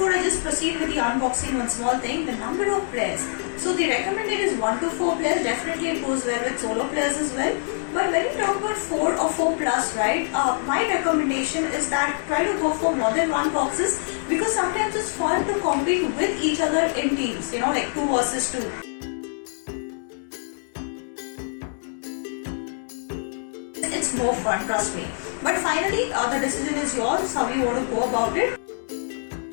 I just proceed with the unboxing, one small thing, the number of players. So the recommended is 1 to 4 players, definitely it goes well with solo players as well. But when you talk about 4 or 4 plus, right, my recommendation is that try to go for more than one boxes because sometimes it's fun to compete with each other in teams, you know, like 2 versus 2. It's more fun, trust me. But finally, the decision is yours, how you want to go about it.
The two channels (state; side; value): silent; right; digital silence